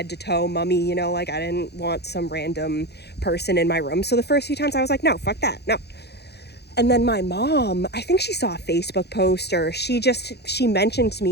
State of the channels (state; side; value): late; right; 0.48 ms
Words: to toe, mummy, you know, like I didn't want some random person in my room. So the first few times I was like, no, fuck that. No. And then my mom, I think she saw a Facebook post, or she mentioned to